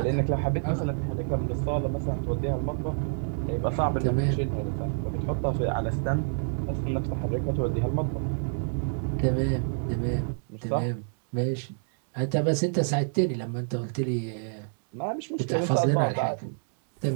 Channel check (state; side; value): silent; left; digital silence